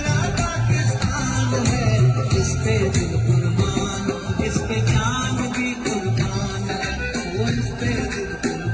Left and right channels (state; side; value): identical; both; correlation 1.00